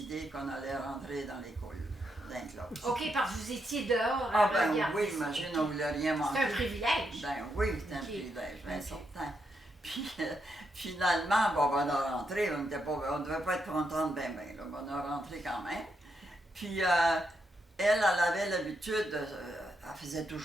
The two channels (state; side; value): normal; both; correlation 0.81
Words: qu'on allait rentrer dans l'école, dans la classe. OK, parce que vous étiez dehors à Ah ben regarder oui, ça. imagine, on ne voulait rien manquer. C'est un privilège. Ben oui, c'est un OK. privilège, bien OK. certain. Puis finalement, bon, on a rentré, on ne devait pas être contente ben, là, on a rentré quand même. Puis elle avait l'habitude, elle faisait